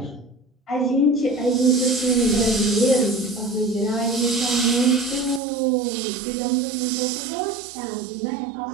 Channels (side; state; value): left; drops out; at 5.4 s